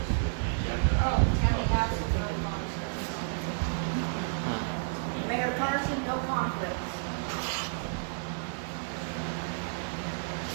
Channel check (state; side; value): silent; left; digital silence